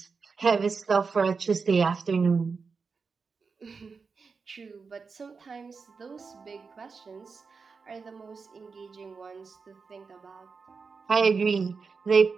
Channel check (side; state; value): left; quieter; 5.0 dB